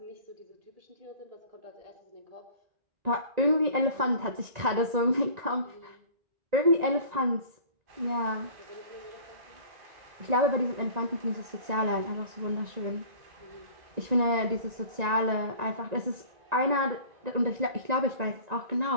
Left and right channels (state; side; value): late; left; 1.9 ms